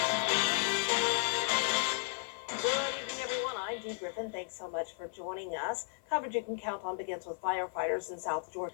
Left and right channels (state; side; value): silent; right; 55 dB below the other